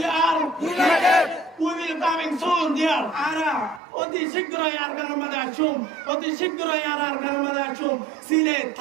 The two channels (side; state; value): left; drops out; at 3.8 s